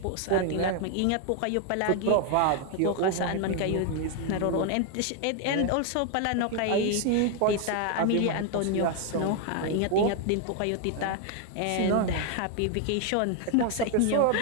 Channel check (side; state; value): both; different; correlation 0.01